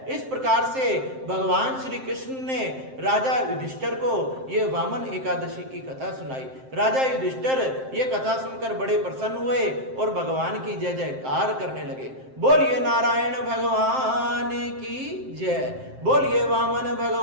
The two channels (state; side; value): late; left; 7.6 ms